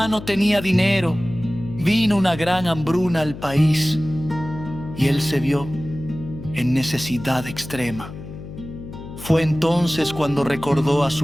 no tenía dinero, vino una gran hambruna al país y él se vio en necesidad extrema. Fue entonces cuando recordó a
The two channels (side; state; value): left; noise; hum, 13 dB below the sound